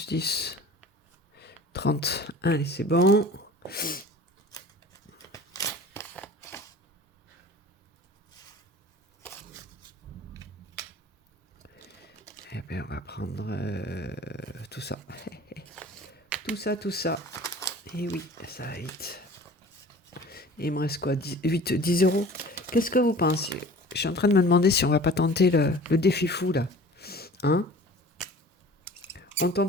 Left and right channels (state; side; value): normal; both; correlation 0.44